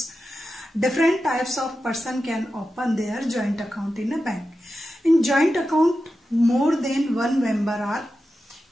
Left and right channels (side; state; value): both; normal; correlation 0.91